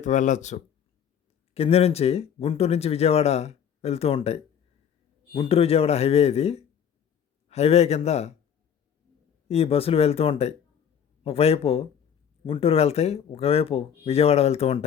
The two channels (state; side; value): quieter; right; 8.3 dB